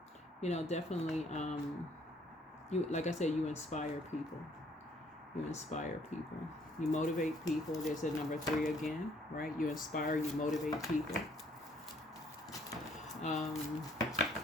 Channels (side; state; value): both; normal; correlation 0.63